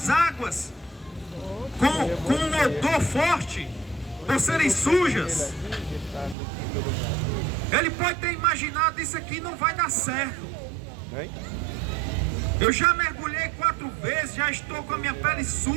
águas com um odor forte, por serem sujas. Ele pode ter imaginado: isso aqui não vai dar certo. Eu já mergulhei 4 vezes, já estou com a minha pele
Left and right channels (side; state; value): left; drops out; at 6.4 s